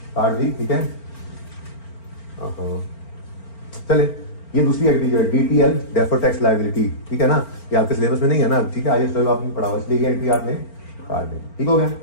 काट दी, ठीक है। चले, ये दूसरी एंट्री जो है DTL डेफर्ड टैक्स लायबिलिटी, ठीक है ना, ये आपके सिलेबस में नहीं है ना, ठीक है, IAS 12 आपने पढ़ा हुआ, इसलिए ये एंट्री आपने काट दी, ठीक हो गया।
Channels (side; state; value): right; late; 4.4 ms